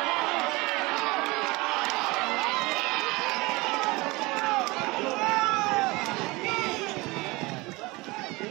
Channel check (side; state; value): left; quieter; 23.3 dB